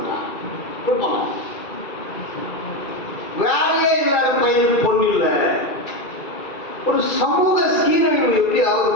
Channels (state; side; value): late; right; 2.3 ms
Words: கொடுப்பாங்க. வேலையே இல்லாத பையனுக்கு பொண்ணு இல்லை. ஒரு சமூக சீரழிவு எப்படி ஆகுது